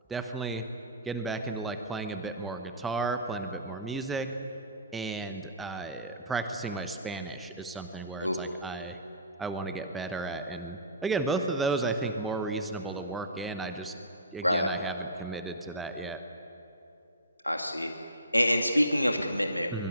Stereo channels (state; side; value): inverted; both; correlation -0.32